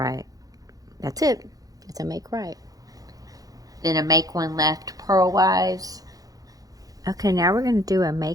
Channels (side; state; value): left; late; 0.17 ms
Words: That's it. It's a make right. Then a make 1 left purlwise. Okay, now we're going to do a